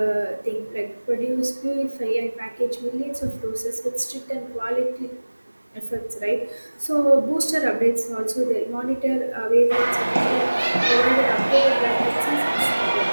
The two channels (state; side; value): inverted; both; correlation -1.00